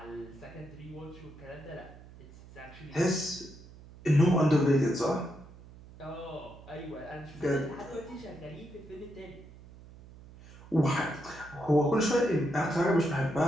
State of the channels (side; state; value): right; noise; hum, 19 dB below the sound